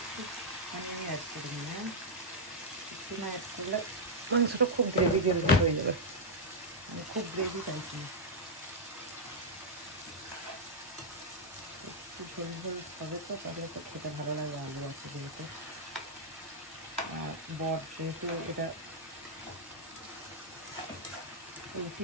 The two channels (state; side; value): normal; both; correlation -0.04